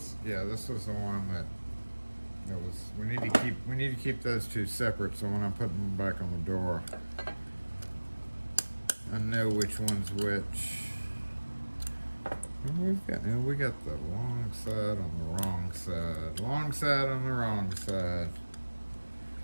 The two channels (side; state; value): both; inverted; correlation -1.00